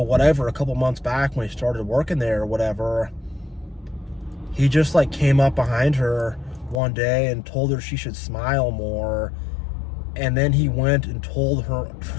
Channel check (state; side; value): drops out; right; at 6.8 s